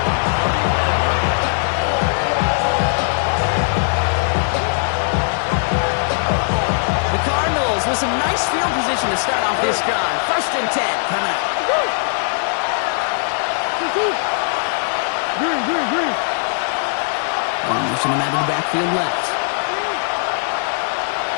The Cardinals with some nice field position to start off this drive. First and 10 coming up. Motion him out of the backfield left.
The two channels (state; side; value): silent; right; digital silence